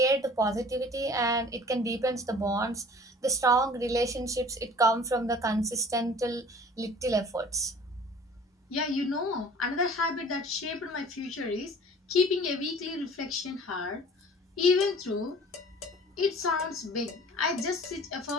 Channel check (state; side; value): normal; both; correlation 0.47